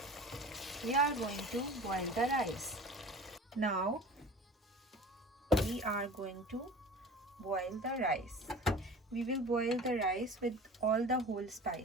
we are going to boil the rice. Now we are going to boil the rice. We will boil the rice with all the whole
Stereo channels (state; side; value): normal; both; correlation 0.38